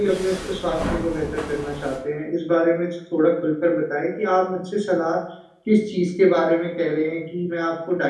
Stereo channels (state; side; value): identical; both; correlation 1.00